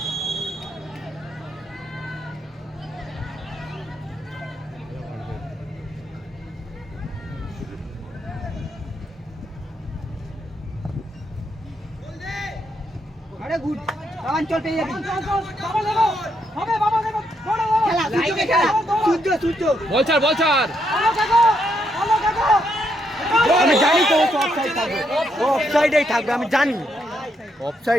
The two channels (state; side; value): normal; both; correlation 0.77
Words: আরে গুড অঞ্চল পেয়ে যাবি খেলা সূর্যকে খেলা সূর্য বল ছাড় আমি জানি তো অফসাইড থাকবে, ও অফসাইডেই থাকবে, আমি জানি।